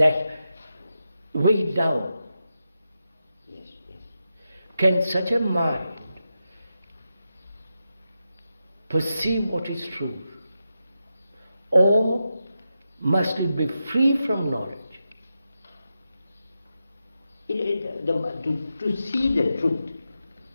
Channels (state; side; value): inverted; both; correlation -0.89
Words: weighed down. Yes. Can such a mind perceive what is true? Or must it be free from knowledge? To see the truth,